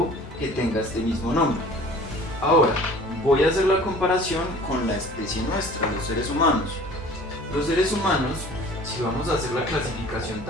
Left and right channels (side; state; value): both; normal; correlation 0.47